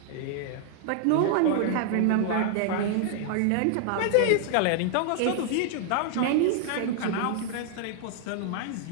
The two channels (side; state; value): both; different; correlation -0.01